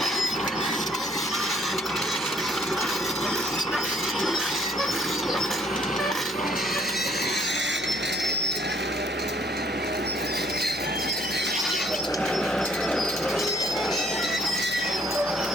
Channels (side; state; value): both; normal; correlation 0.63